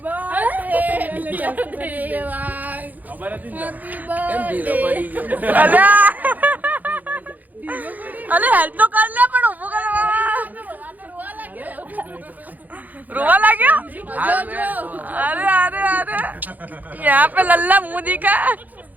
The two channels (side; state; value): left; late; 0.082 ms